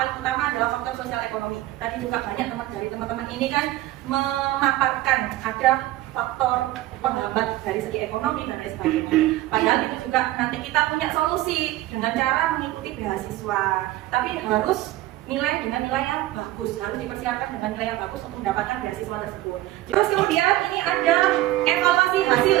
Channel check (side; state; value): left; quieter; 16.1 dB